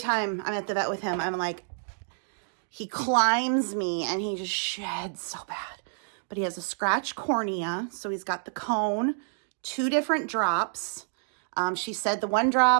I'm at the vet with him, I'm like, he climbs me and he just sheds so bad. But he has a scratched cornea, so he's got the cone, 2 different drops. She said the 1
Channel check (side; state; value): left; silent; digital silence